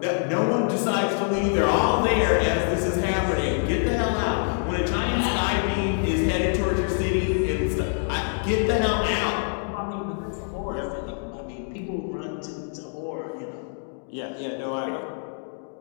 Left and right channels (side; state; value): right; silent; 58 dB below the other